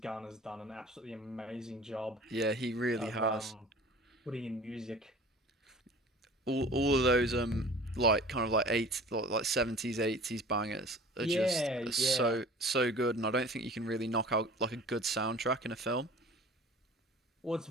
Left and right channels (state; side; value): normal; both; correlation 0.44